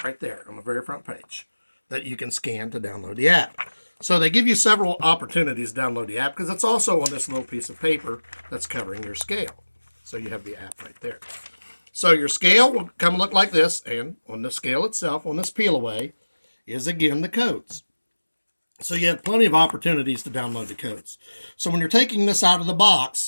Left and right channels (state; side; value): inverted; both; correlation -1.00